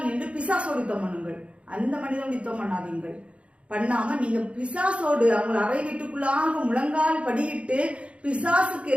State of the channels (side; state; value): left; late; 0.061 ms